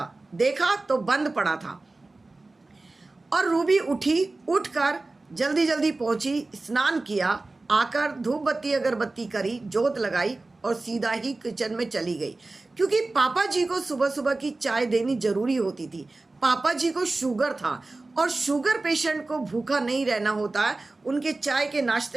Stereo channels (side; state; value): left; quieter; 3.2 dB